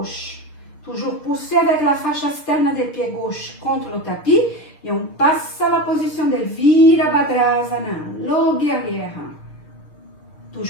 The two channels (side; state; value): right; late; 6.6 ms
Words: Toujours pousser avec la fascia externe des pieds gauche contre le tapis. Et on passe à la position de Virabhadrasana, le guerrière.